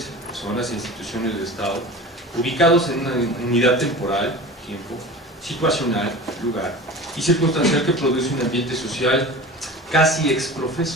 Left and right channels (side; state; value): both; normal; correlation 0.35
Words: personas e instituciones del Estado, ubicados en una unidad temporal, tiempo, situacional, lugar y circunstancial que produce un ambiente social casi